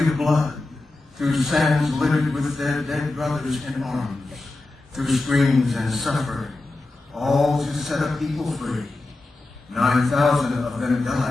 blood, through sands littered with their dead brothers in arms, through screams and suffering, all to set a people free. 9,000 of them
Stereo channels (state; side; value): quieter; right; 3.1 dB